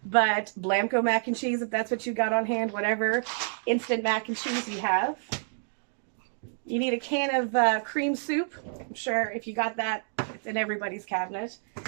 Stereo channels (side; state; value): left; silent; 59 dB below the other